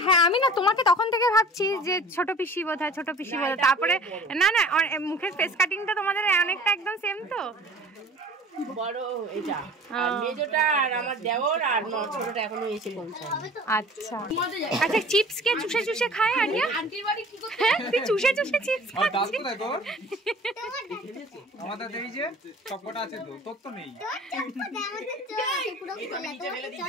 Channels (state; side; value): normal; both; correlation 0.45